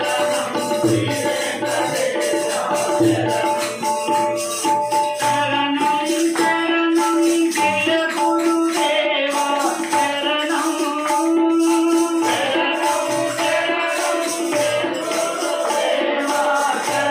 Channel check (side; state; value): both; identical; correlation 1.00